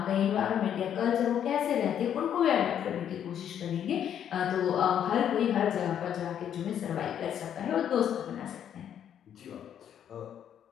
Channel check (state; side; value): quieter; right; 9.4 dB